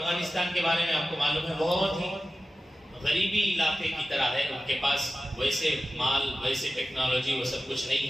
کے بارے میں آپ کو معلوم ہے بہت ہی غریبی علاقے کی طرح ہے. ان کے پاس ویسے مال، ویسے ٹیکنالوجی، وہ سب کچھ نہیں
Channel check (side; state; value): both; normal; correlation 0.94